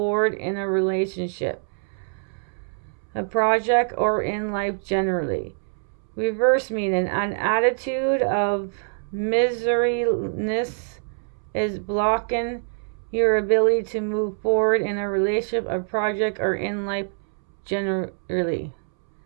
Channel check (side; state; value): left; silent; 62 dB below the other